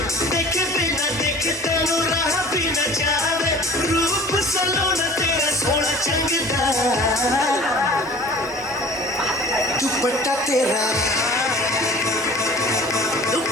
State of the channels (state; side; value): normal; both; correlation 0.44